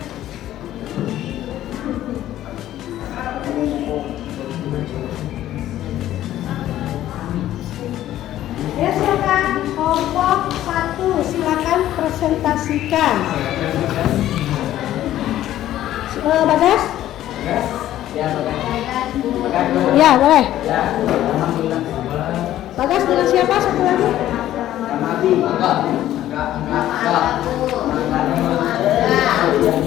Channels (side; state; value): right; quieter; 13.1 dB